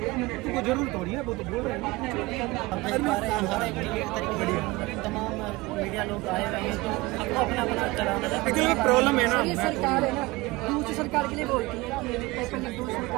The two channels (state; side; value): quieter; left; 21.6 dB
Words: जरूर थोड़ी है, वो तो बोल रहे हैं। अब देख पा रहे हैं हर एक तरीके तमाम मीडिया लोग आए हुए हैं तो सबको अपना अपना चलाना है। एक्चुअली प्रॉब्लम है ना, ये सरकार है ना, दूसरी सरकार के लिए बोलती है कि पेपर लीक दूसरी